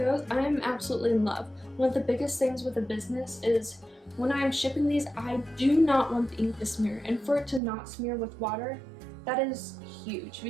I am absolutely in love. One of the biggest things with a business is when I am shipping these, I do not want the ink to smear, and for it to not smear with water, that is huge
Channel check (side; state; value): left; drops out; at 7.6 s